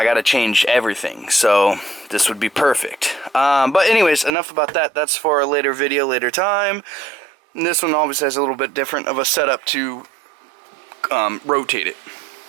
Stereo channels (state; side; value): drops out; left; at 4.3 s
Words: gotta change everything, so this would be perfect. But anyways, enough about that. That's for a later video, later time. And this one obviously has a little bit different of a setup to rotate it.